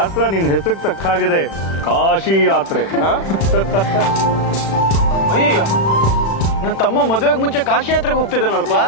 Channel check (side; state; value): right; late; 36 ms